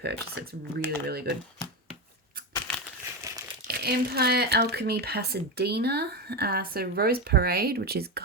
it. It's really, really good. Empire Alchemy Pasadena. So Rose Parade, which is,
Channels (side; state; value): both; normal; correlation 0.15